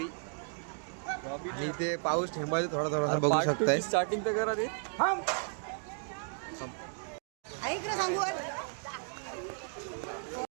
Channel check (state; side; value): silent; left; 55 dB below the other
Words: आणि ते पाऊस ठेंबालतोय थोडा थोडासा, बघू शकताय. स्टार्टिंग तर करा ते. सांगू